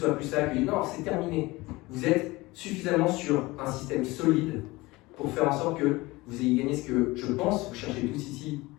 plus ça, que non, c'est terminé. Vous êtes suffisamment sur un système solide pour faire en sorte que vous ayez gagné ce que je pense vous cherchez tous ici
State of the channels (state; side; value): quieter; right; 21.3 dB